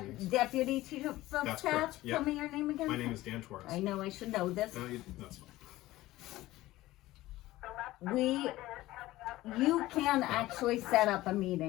these meetings. deputy chief of That's staff? correct, yeah. Tell me your name again. My name is Dan Torres. I know I should know this. No, that's fine. You can actually set up a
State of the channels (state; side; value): quieter; right; 17.0 dB